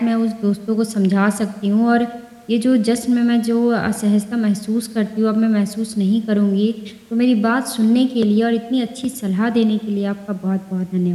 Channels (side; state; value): both; identical; correlation 1.00